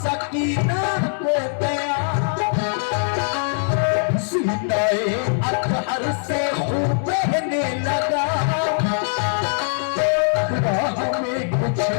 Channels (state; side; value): silent; right; digital silence